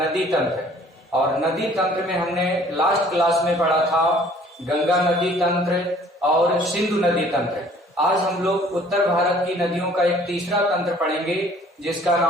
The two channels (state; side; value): normal; both; correlation 0.55